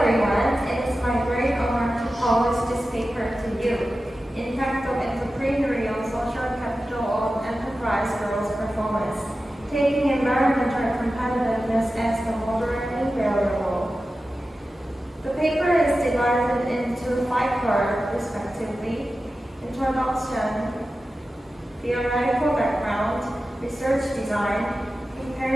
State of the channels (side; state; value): both; normal; correlation 0.93